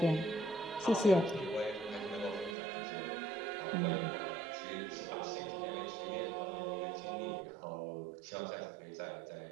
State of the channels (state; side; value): drops out; left; at 2.6 s